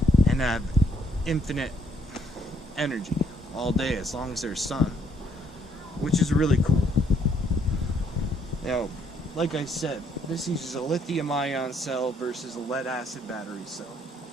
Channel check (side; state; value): both; normal; correlation 0.69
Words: and have infinite energy all day as long as there's sun, which is really cool. Now, like I said, this uses a lithium-ion cell versus a lead-acid battery cell.